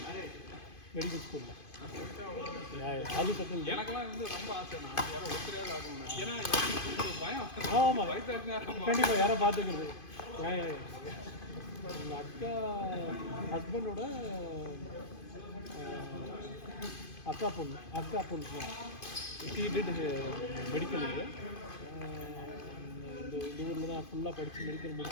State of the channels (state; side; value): late; right; 2.5 ms